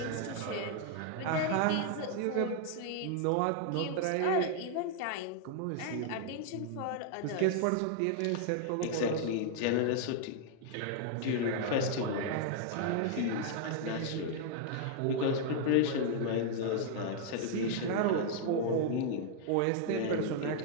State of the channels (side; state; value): both; different; correlation 0.00